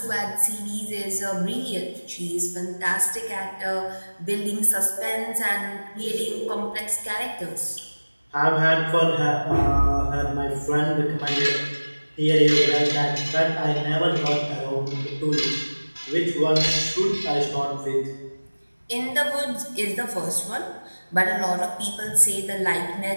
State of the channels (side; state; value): both; inverted; correlation -1.00